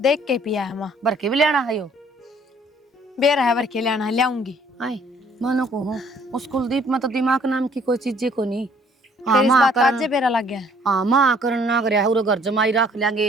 देख के पिया है माँ, भर के भी लेना है यो। बेर है भर के लेना है, लाऊंगी। आई मानो को हो, उस कुलदीप में तो दिमाग नाम की कोई चीज को नहीं। फिर इस बात का आज बेरा लग गया। हाँ माँ करन ना करे, उरे घर जमाई रख लेंगे,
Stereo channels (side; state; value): both; normal; correlation 0.59